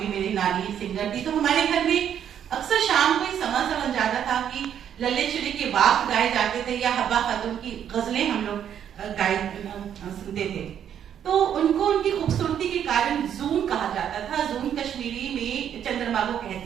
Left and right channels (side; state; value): left; quieter; 9.3 dB